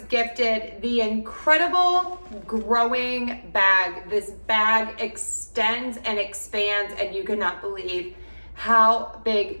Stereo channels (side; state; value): both; inverted; correlation -1.00